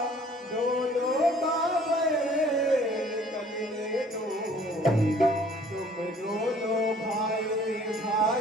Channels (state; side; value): normal; both; correlation 0.55